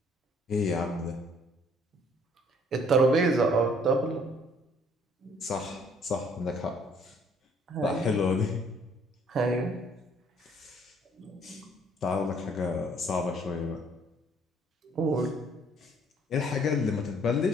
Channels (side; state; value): both; normal; correlation 0.60